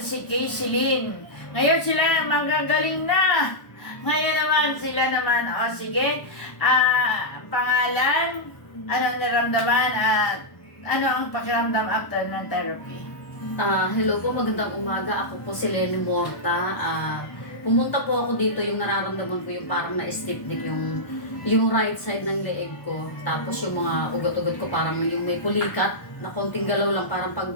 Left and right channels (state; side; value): late; right; 1.2 ms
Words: si Casey Lynn. Ngayon sila magagaling na. Ngayon naman, sila naman. O sige, pangalan, anong naramdaman at ano ang pakiramdam after ng therapy? Hello po, magandang umaga. Ako po si Lenny Morta. Pumunta po ako dito, yung nararamdaman ko yung parang na-stiff neck, yung right side ng leeg ko. Tapos yung mga ugat-ugat ko parang yung may pulikat na konting galaw lang, parang pag